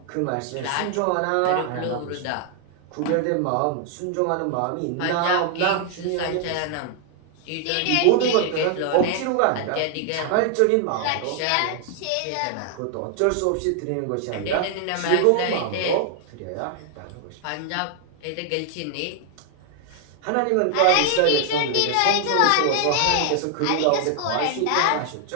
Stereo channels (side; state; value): both; different; correlation 0.00